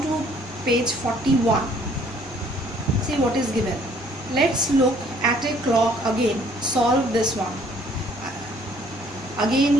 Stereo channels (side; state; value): both; normal; correlation 0.60